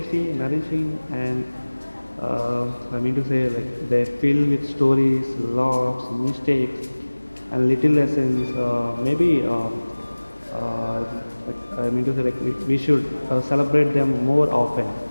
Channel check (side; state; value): both; inverted; correlation -1.00